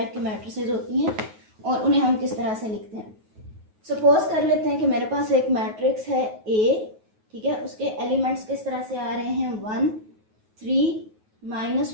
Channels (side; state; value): left; late; 9.3 ms